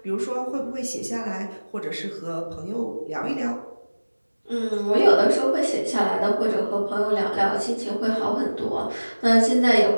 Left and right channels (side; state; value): both; inverted; correlation -1.00